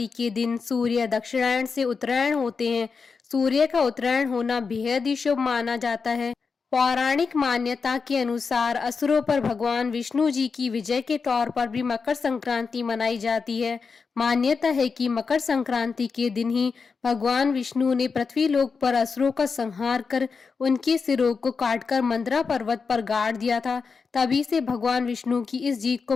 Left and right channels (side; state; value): right; quieter; 5.1 dB